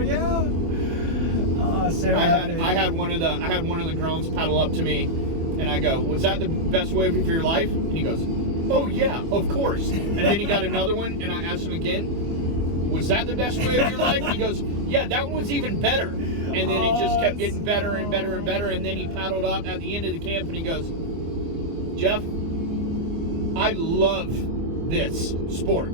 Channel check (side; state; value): left; late; 24 ms